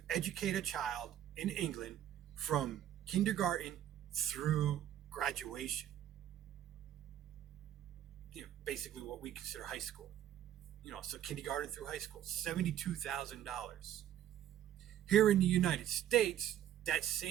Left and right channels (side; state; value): left; quieter; 11.3 dB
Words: educate a child in England from kindergarten through graduation. Basically what we consider high school. So kindergarten through high school, $72,000. Here in the United States, that